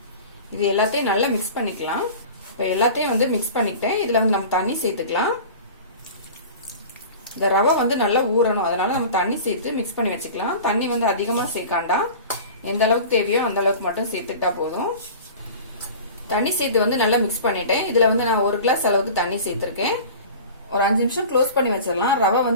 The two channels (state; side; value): inverted; both; correlation -0.38